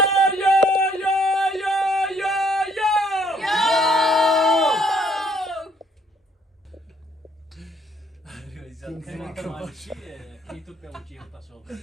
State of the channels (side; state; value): both; normal; correlation 0.65